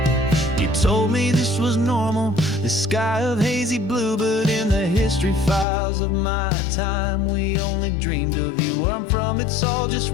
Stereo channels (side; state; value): right; drops out; at 5.7 s